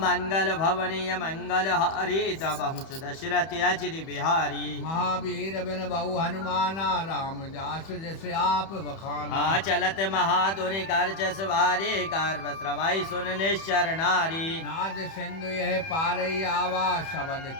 मंगल भवनीय मंगल हरि दबहु सुदशरथ अजिर बिहारी महावीर बिन बहु हनुमाना राम जास जैसे आप बखाना चलत महाधुनि कर जस वारे गर्भ श्रवाई सुन निश्चर नारी नाद सिंधु यह पारई आवा शबद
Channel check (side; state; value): right; late; 31 ms